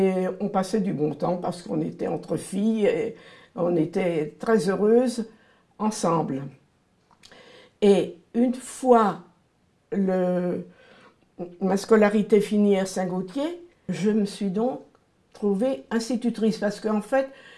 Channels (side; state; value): both; identical; correlation 1.00